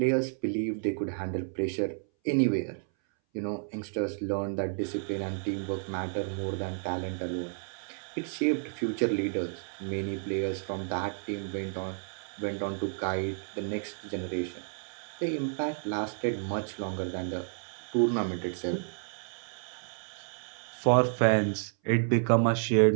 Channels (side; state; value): left; silent; 57 dB below the other